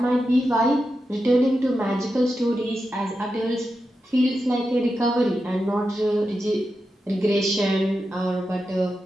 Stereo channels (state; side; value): normal; both; correlation 0.89